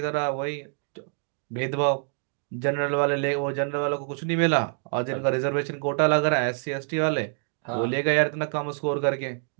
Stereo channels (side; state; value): left; silent; 61 dB below the other